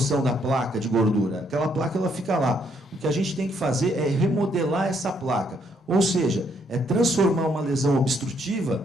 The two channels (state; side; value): normal; both; correlation 0.71